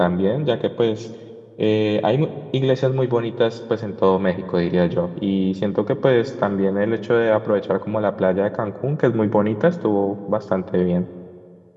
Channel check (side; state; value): both; identical; correlation 1.00